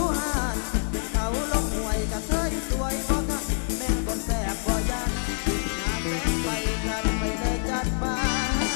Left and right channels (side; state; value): right; silent; digital silence